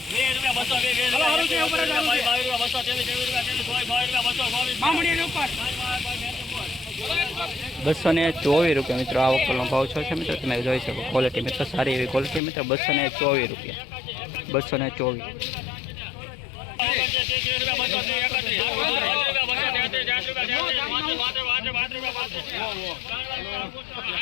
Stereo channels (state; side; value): drops out; right; at 12.4 s